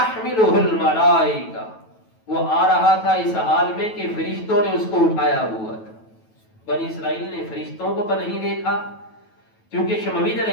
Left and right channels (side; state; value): right; late; 9.2 ms